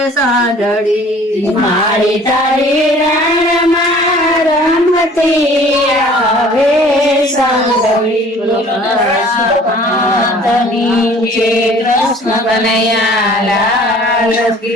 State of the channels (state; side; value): normal; both; correlation 0.51